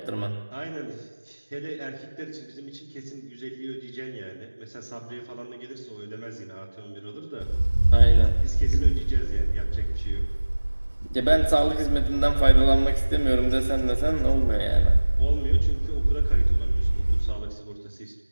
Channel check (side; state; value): both; inverted; correlation -1.00